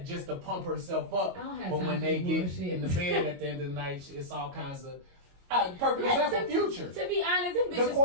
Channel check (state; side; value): late; left; 22 ms